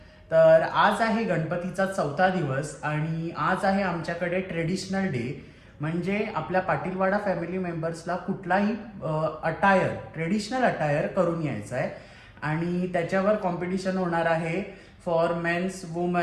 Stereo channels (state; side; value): identical; both; correlation 1.00